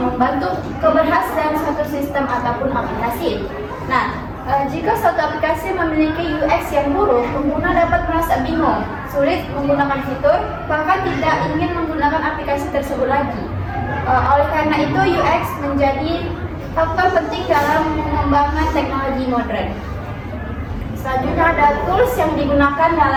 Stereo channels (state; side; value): identical; both; correlation 1.00